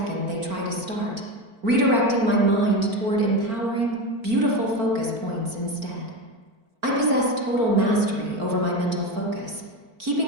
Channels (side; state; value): left; late; 4.4 ms